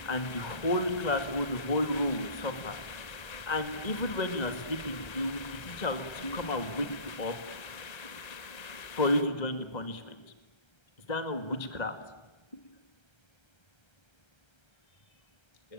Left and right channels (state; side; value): late; right; 1.3 ms